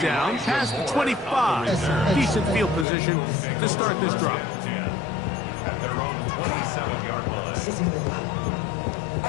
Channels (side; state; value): right; drops out; at 2.9 s